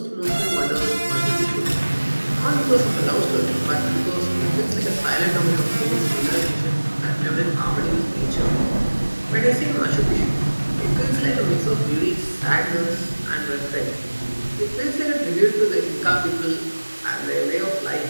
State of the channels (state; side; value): inverted; both; correlation -1.00